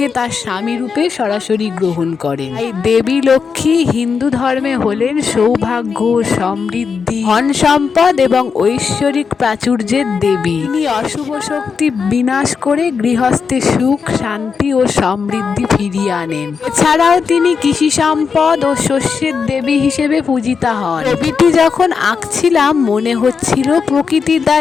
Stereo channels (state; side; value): quieter; right; 5.7 dB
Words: তার স্বামী রূপে সরাসরি গ্রহণ করেন। তাই দেবী লক্ষ্মী হিন্দু ধর্মে হলেন সৌভাগ্য, সমৃদ্ধি, ধন সম্পদ এবং ঐশ্বরিক প্রাচুর্যের দেবী। তিনি অশুভ শক্তি বিনাশ করে গৃহস্থে সুখ, শান্তি ও সমৃদ্ধি ফিরিয়ে আনেন। এছাড়াও তিনি কৃষি সম্পদ ও শস্যের দেবী হিসেবে পূজিতা হন। ছবিটি যখন আঁকছিলাম মনে হচ্ছিল প্রকৃতি